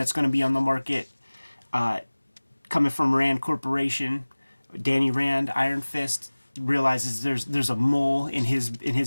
going to be on the market coming from Rand Corporation. Danny Rand, Iron Fist, realizes there's a mole in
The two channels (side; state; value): both; inverted; correlation -1.00